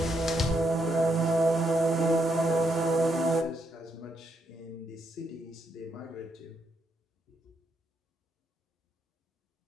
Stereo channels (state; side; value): normal; both; correlation 0.78